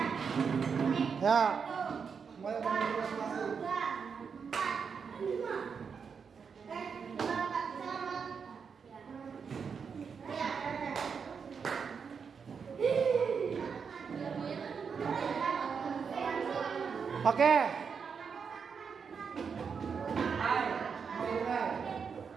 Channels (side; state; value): left; quieter; 6.1 dB